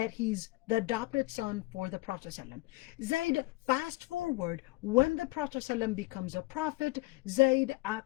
he's the adopted son for the Prophet ﷺ. Zayd, fast forward, when the Prophet ﷺ becomes a prophet, Zayd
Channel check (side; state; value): right; quieter; 21.6 dB